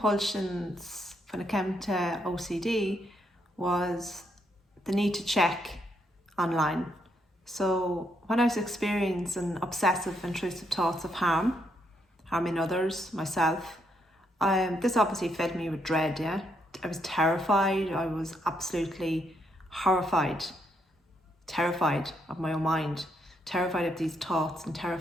when it came to OCD was the need to check online. So when I was experiencing obsessive intrusive thoughts of harming others, myself, this obviously filled me with dread, yeah. I was terrified, I was absolutely horrified, terrified of my own mind, terrified of these thoughts and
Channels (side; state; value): both; normal; correlation 0.76